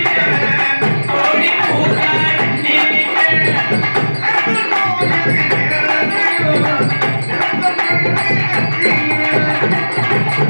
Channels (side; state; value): both; inverted; correlation -1.00